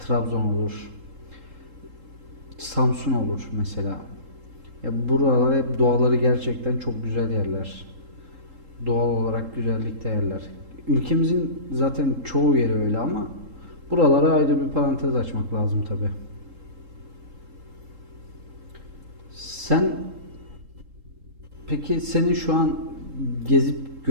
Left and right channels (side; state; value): left; late; 3.7 ms